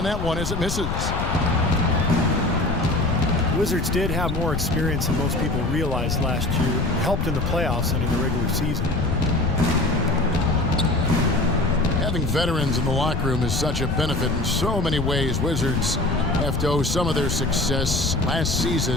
that one as it misses. Wizards did have more experience than most people realized last year. Helped in the playoffs and in the regular season. Having veterans in the locker room is such a benefit in so many ways. Wizards have to owe some of their success last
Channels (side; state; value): left; noise; rumble, 2 dB below the sound